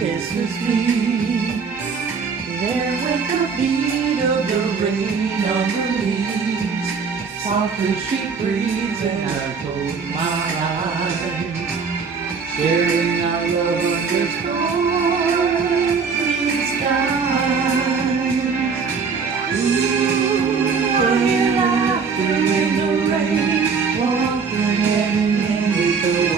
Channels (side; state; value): left; quieter; 5.5 dB